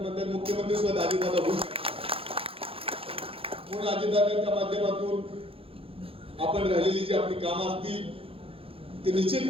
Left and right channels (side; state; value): left; late; 0.27 ms